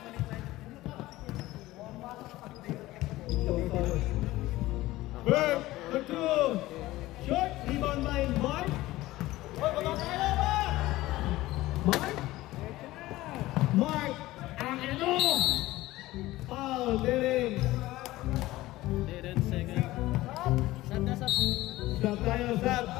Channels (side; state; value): right; quieter; 17.4 dB